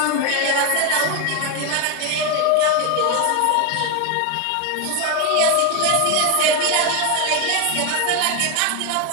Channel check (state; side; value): different; both; correlation 0.01